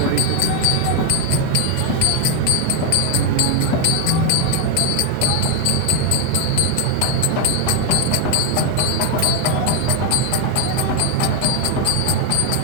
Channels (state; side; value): different; both; correlation 0.01